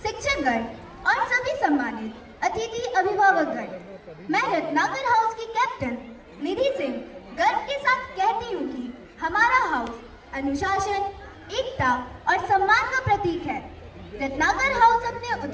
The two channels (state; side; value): identical; both; correlation 1.00